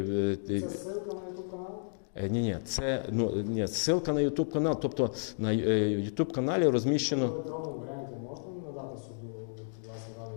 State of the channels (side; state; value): right; silent; digital silence